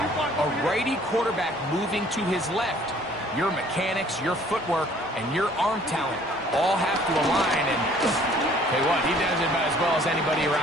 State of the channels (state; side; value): normal; both; correlation 0.56